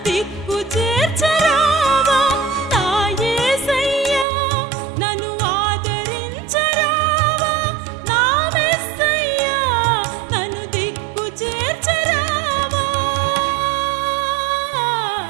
దిక్కు చేర్చరావా, నా యేసయ్యా నన్ను ఆదరించరావా, నా మెస్సయ్యా నన్ను దిక్కు చేర్చరావా.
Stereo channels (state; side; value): drops out; left; at 4.2 s